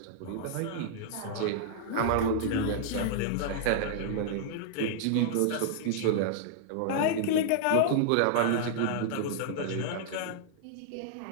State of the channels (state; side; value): different; both; correlation -0.01